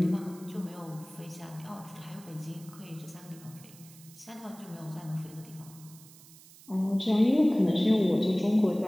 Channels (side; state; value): right; noise; hiss, 21 dB below the sound